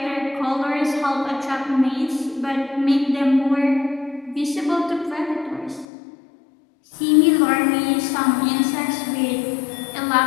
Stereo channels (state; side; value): drops out; right; at 5.9 s